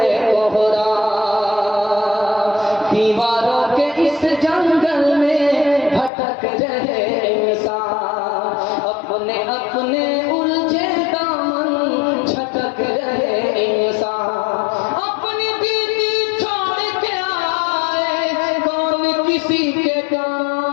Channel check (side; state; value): right; drops out; at 6.1 s